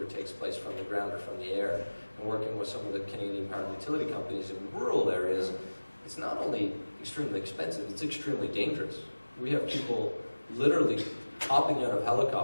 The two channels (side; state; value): both; inverted; correlation -1.00